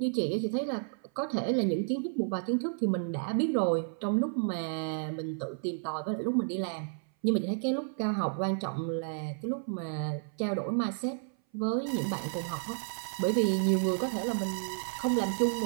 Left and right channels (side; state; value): left; silent; 57 dB below the other